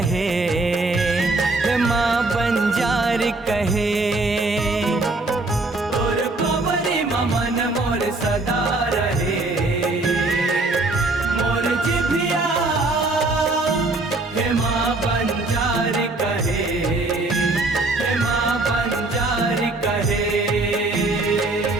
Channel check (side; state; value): left; quieter; 3.0 dB